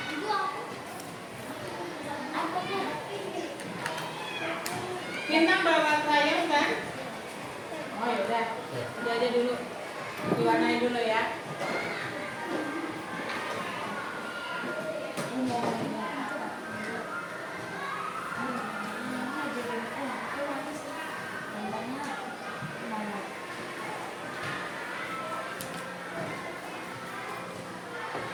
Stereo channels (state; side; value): identical; both; correlation 1.00